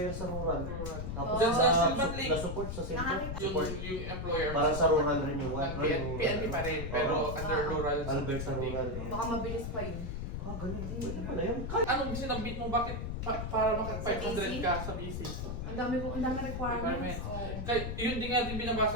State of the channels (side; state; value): left; noise; rumble, 4 dB below the sound